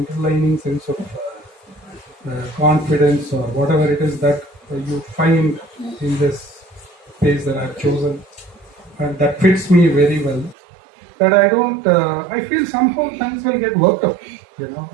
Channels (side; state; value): left; drops out; at 10.6 s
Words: sense of confidence or whatever it is that you find in this space that I've chosen, and that fits me very well. That I feel somehow things will get worked out,